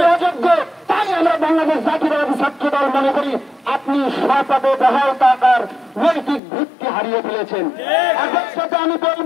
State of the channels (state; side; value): drops out; right; at 6.4 s